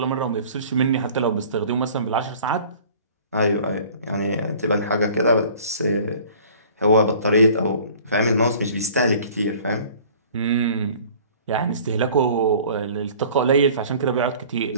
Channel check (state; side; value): inverted; both; correlation -0.48